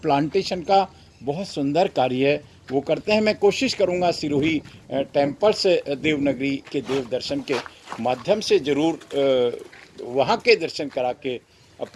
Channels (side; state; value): both; identical; correlation 1.00